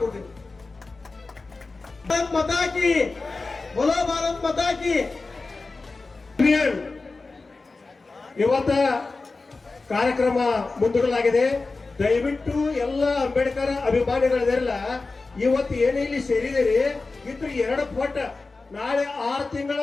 ಭಾರತ್ ಮಾತಾ ಕಿ, ಬೋಲೋ ಭಾರತ್ ಮಾತಾ ಕಿ. ಇವತ್ತ ಕಾರ್ಯಕ್ರಮ ಮುಂದೂಡಲಾಗಿದೆ. ದಯವಿಟ್ಟು ಎಲ್ಲ ಅಂಬೇಡ್ಕರ್ ಅಭಿಮಾನಿಗಳಿರಲ್ಲ, ಇವತ್ತು ಏನೇ ಇಲ್ಲಿ ಸೇರಿದಿರಿ ಇದ್ರ 2 ಪಟ್ಟು ನಾಳೆ 6 ತಿಂಗಳ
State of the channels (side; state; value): right; quieter; 3.7 dB